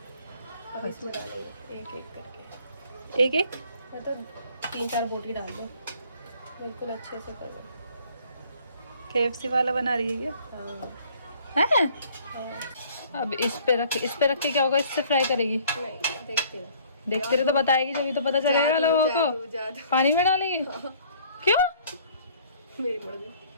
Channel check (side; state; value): both; inverted; correlation -0.56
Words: अब इसमें डालेंगे एक एक करके। एक एक मैं तो 3-4 बोटी डाल दो, बिल्कुल अच्छे से कर लो। KFC वाला बना रही है हाँ क्या है? हाँ। अब इस पे रख के क्या होगा? इससे फ्राई करेगी? नहीं देखते हो। देखते रहे तो बताएगी, जब तो पता चलेगा लोगों को। जादू पानी में डालेगी? क्यों? मेरी मर्जी।